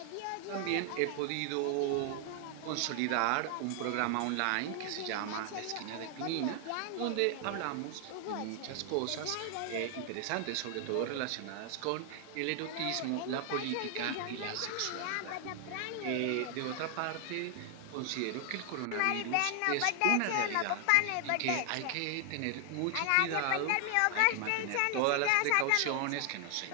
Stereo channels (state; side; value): different; both; correlation 0.00